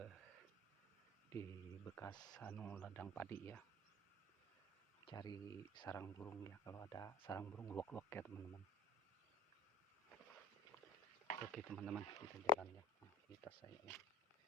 di bekas ladang padi ya, cari sarang burung ya, kalau ada sarang burung luwak-luwak ya teman-teman. Oke teman-teman, kita jalan ya. Kita saya ya,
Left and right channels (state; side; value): normal; both; correlation 0.42